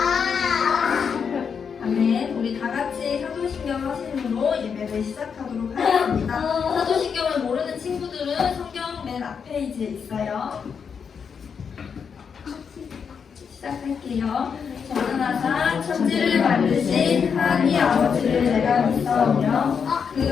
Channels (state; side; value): quieter; right; 6.5 dB